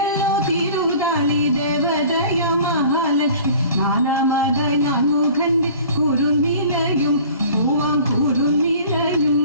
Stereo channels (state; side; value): inverted; both; correlation -0.46